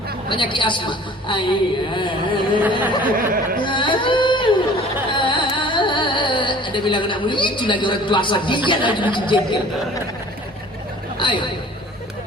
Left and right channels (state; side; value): normal; both; correlation 0.48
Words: penyakit asma. Ada bilang anak muda itu lagi orang tua asal dia lagi menjengkel. Ayo,